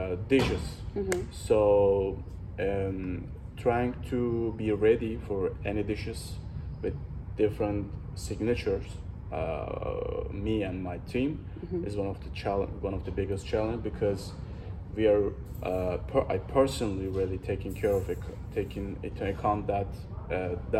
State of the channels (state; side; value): identical; both; correlation 1.00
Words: dishes. So trying to be ready for any dishes with different signatures. Me and my team is one of the biggest challenge because we are I personally really taking care of it, taking into account that